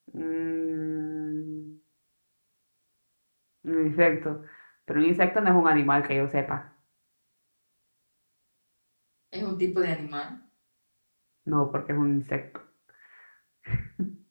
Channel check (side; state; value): both; inverted; correlation -1.00